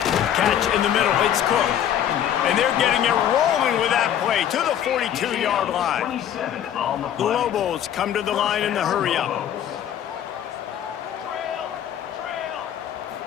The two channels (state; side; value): quieter; right; 10.1 dB